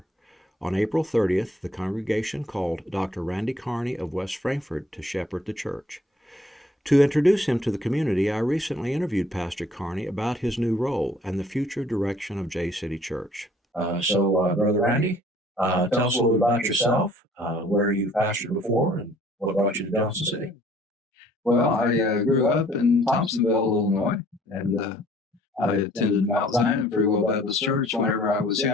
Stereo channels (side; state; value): both; normal; correlation 0.57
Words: On April 30th, the congregation called Dr. Randy Carney of West Frankfort to shepherd the church. To introduce him to the community, I recently interviewed Pastor Carney about his new role and the future direction of Jay City Church. Brother Randy, tell us a little about yourself, where you pastored before, and what brought you to Johnson City. Well, I grew up in Thompsonville, Illinois, and I attended Mount Zion Free Will Baptist Church whenever I was